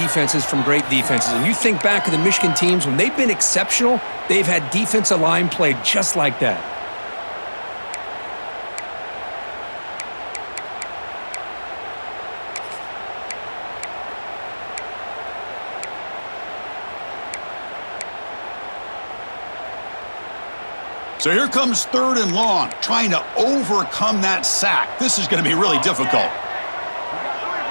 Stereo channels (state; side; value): inverted; both; correlation -1.00